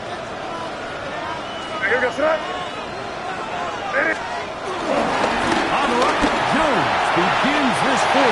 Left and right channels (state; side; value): identical; both; correlation 1.00